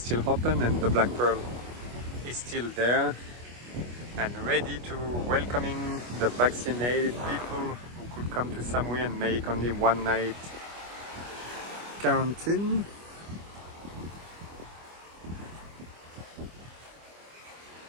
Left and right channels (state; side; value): late; left; 25 ms